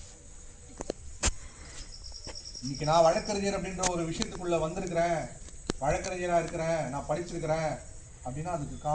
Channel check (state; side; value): identical; both; correlation 1.00